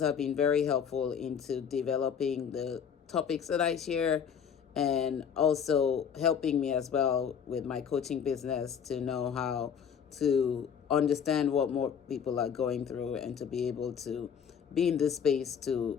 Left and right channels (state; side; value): quieter; right; 7.5 dB